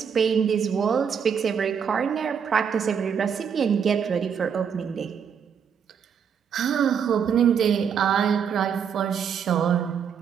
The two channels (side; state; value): left; quieter; 7.3 dB